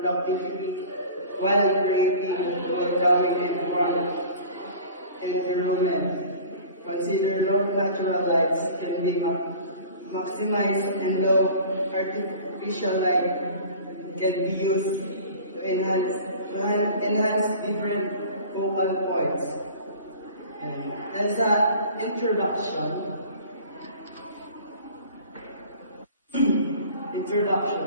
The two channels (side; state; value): both; inverted; correlation -0.43